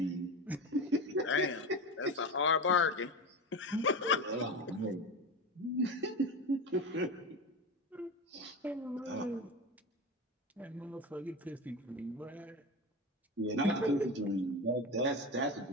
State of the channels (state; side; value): normal; both; correlation 0.23